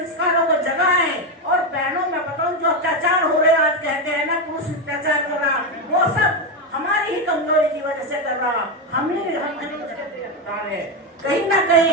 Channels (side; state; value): both; normal; correlation 0.10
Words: को जगाएं। और बहनों में बताऊं, जो अत्याचार हो रहे आज कहते हैं ना, पुरुष अत्याचार कर रहा, वो सब हमारी ही कमजोरी की वजह से कर रहा। हम कहीं ना कहीं